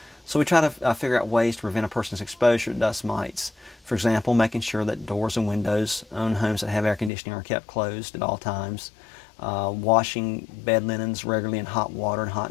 So we try to figure out ways to prevent a person's exposure to dust mites. For example, making sure that doors and windows on homes that have air conditioning are kept closed at all times, washing bed linens regularly in hot water and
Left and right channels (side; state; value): right; drops out; at 7.1 s